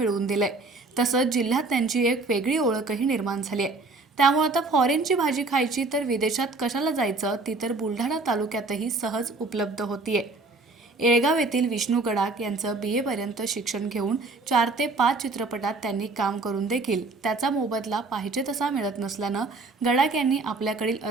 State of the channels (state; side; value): quieter; left; 3.5 dB